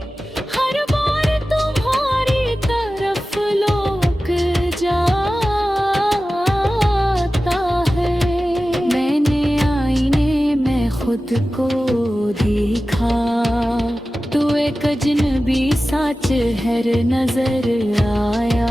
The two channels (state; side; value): normal; both; correlation 0.95